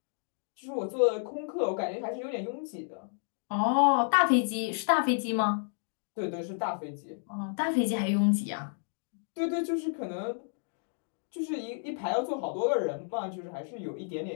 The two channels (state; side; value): silent; right; digital silence